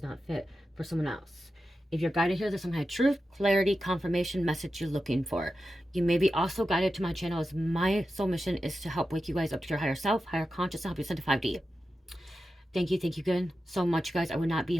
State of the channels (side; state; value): both; normal; correlation 0.91